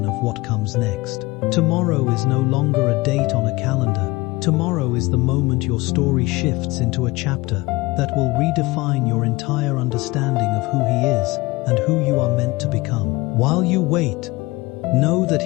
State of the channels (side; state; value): right; quieter; 21.9 dB